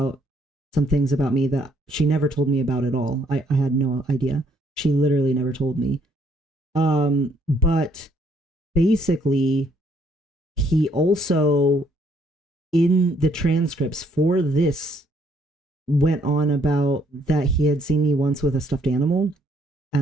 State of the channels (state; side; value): normal; both; correlation 0.68